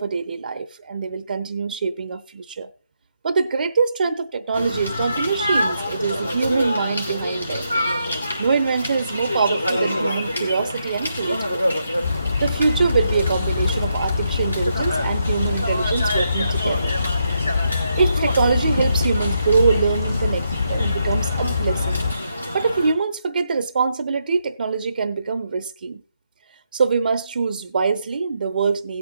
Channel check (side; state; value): both; inverted; correlation -0.80